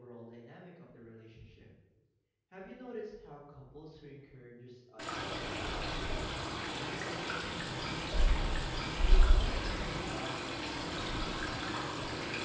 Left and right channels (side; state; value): both; identical; correlation 1.00